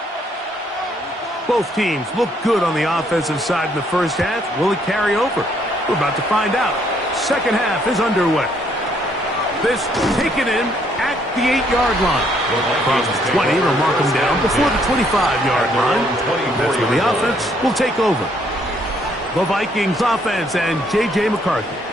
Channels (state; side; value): normal; both; correlation 0.68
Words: Both teams look good on the offensive side in the first half. Will it carry over? We're about to find out. Second half is underway. This taken in at the 8-yard line. Across the 20, they'll mark them down before the 25-yard line. That's where the offense will take over. The Vikings offense and J.J. McCarthy